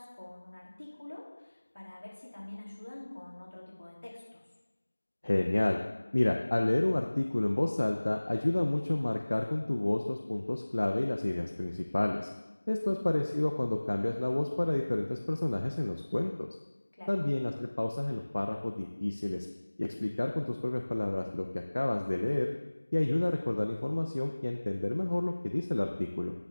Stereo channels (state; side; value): inverted; both; correlation -1.00